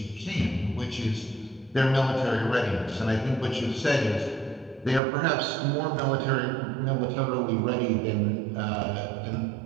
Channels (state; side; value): drops out; left; at 5.0 s